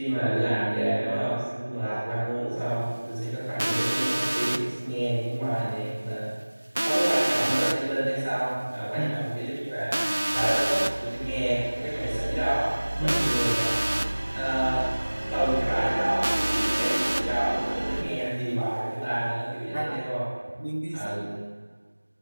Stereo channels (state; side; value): inverted; both; correlation -1.00